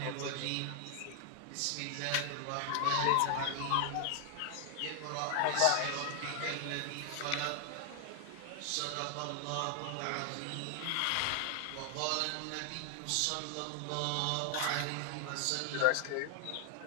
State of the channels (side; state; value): both; different; correlation 0.00